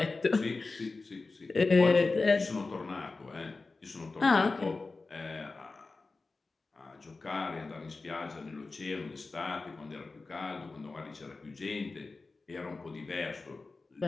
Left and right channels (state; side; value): quieter; right; 3.7 dB